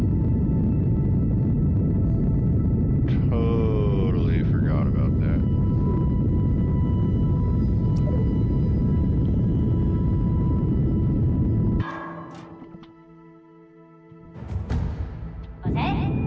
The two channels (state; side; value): identical; both; correlation 1.00